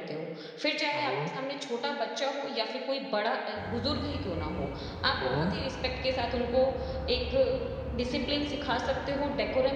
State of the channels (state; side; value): identical; both; correlation 1.00